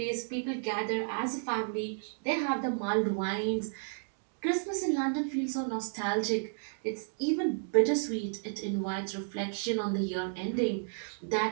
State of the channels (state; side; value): silent; left; digital silence